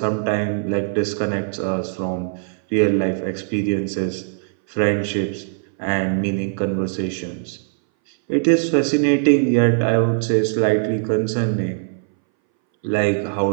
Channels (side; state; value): left; silent; 62 dB below the other